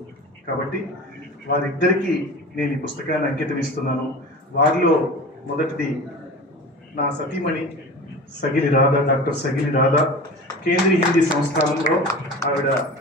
కాబట్టి వారిద్దరికీ నేను ఈ పుస్తకాన్ని అంకితం ఇస్తున్నాను. వారిలో మొదటిది నా సతీమణి సగిలి రాధా, డాక్టర్ సగిలి రాధా. కేంద్రీయ హిందీ సంస్థానంలో ఆవిడ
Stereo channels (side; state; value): both; normal; correlation 0.35